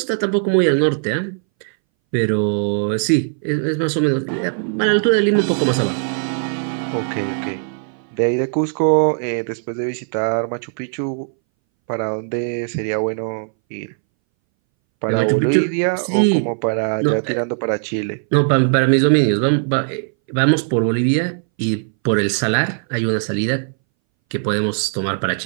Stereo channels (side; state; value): left; silent; 63 dB below the other